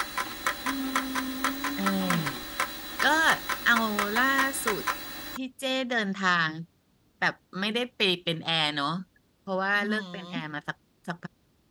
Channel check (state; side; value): identical; both; correlation 1.00